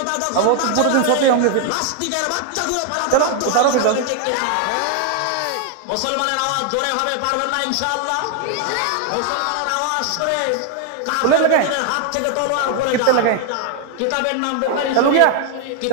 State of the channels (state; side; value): different; both; correlation 0.00